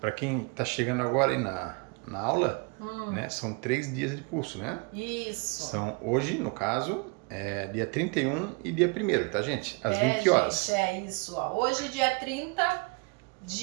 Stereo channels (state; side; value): quieter; left; 30.5 dB